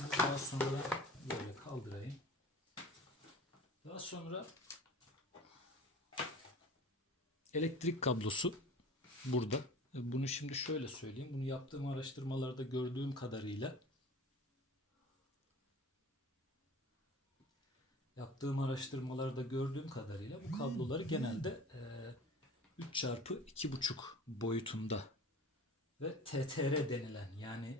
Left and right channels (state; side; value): normal; both; correlation 0.40